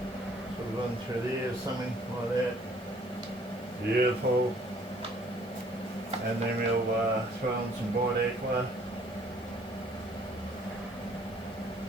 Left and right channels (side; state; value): left; noise; hiss, 25 dB below the sound